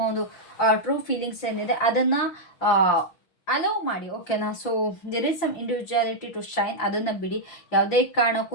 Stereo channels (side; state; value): right; late; 6.3 ms